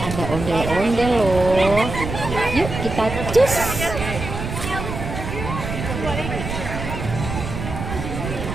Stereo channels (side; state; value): right; noise; rumble, 6 dB below the sound